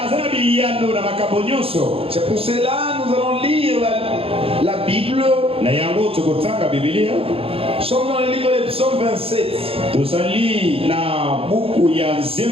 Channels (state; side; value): late; left; 0.27 ms